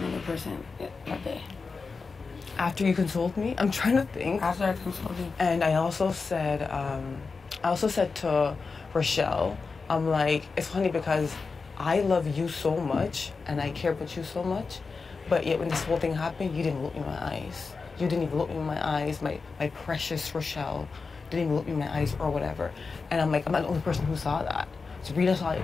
person that day? After you consoled me? I'm trying to think. After I consoled you. And I also said to Rochelle, I'm like, it's funny because I love you so much, and I care about you so much, but yet when this whole thing happened, you didn't look me in my eyes. You didn't even look me in my eyes, my precious Rochelle. Didn't even look me in my eyes or whatever. And I'm like, I'm not the only person who saw that. Sabrina saw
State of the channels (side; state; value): right; quieter; 4.5 dB